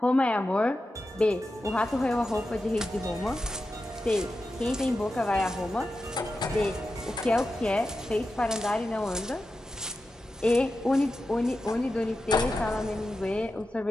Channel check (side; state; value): both; normal; correlation 0.91